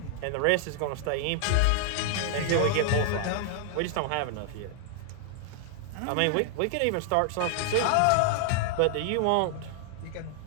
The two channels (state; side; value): different; both; correlation 0.00